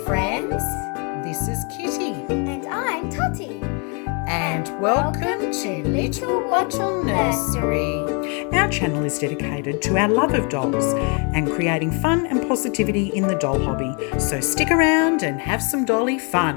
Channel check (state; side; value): quieter; right; 34.9 dB